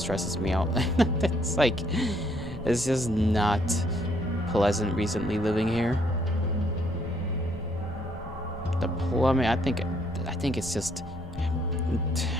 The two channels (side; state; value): both; normal; correlation 0.69